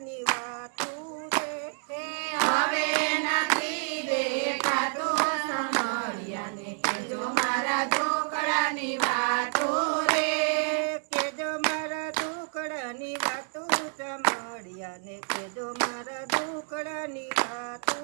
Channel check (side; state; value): left; silent; 59 dB below the other